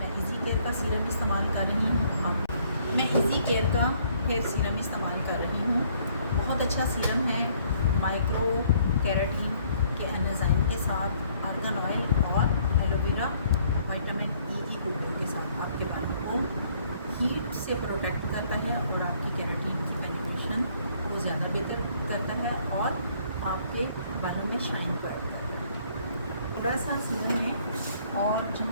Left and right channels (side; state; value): both; inverted; correlation -0.63